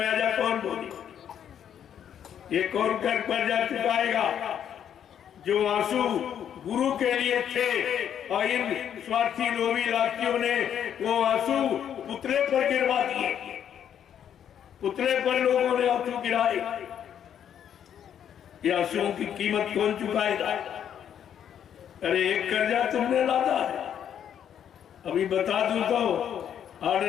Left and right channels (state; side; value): quieter; right; 9.2 dB